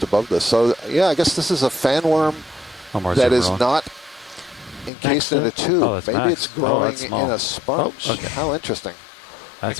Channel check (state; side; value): drops out; right; at 4.9 s